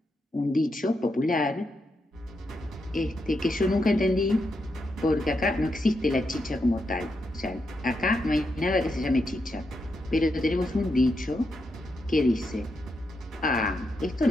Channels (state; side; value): normal; both; correlation 0.83